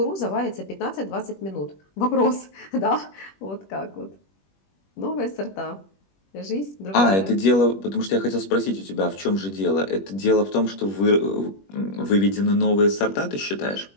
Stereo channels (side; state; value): right; late; 21 ms